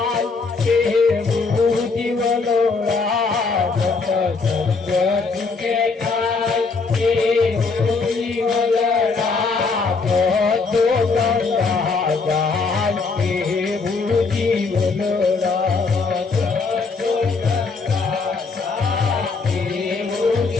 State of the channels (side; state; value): right; quieter; 4.4 dB